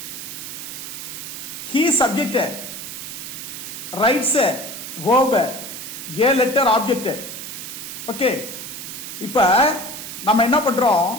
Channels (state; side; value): noise; right; hiss, 9 dB below the sound